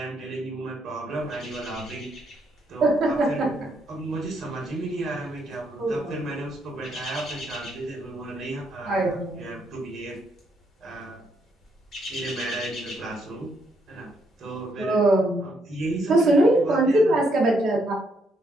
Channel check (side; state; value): both; normal; correlation 0.74